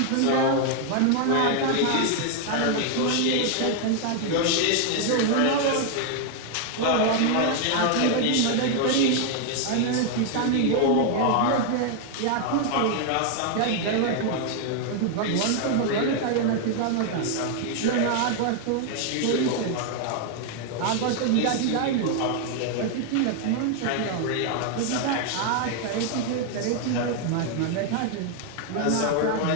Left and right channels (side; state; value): both; different; correlation 0.00